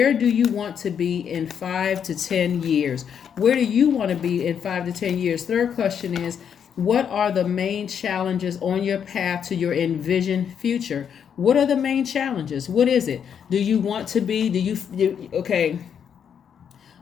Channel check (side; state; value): right; quieter; 7.9 dB